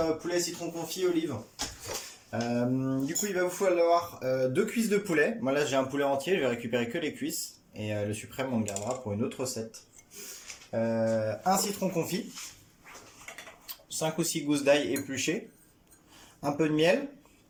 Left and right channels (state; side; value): identical; both; correlation 1.00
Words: citron confit olive. Du coup il va vous falloir 2 cuisses de poulet. Moi là j'ai un poulet entier, je vais récupérer que les cuisses. Et le suprême on le gardera pour une autre recette. Un citron confit, 5 ou 6 gousses d'ail épluchées, un peu de miel,